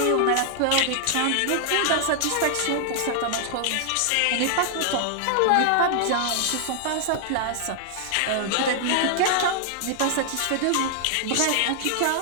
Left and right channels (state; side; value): different; both; correlation 0.00